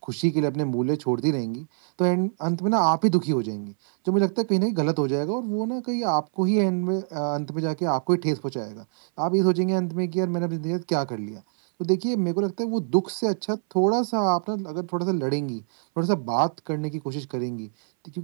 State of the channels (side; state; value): left; silent; 62 dB below the other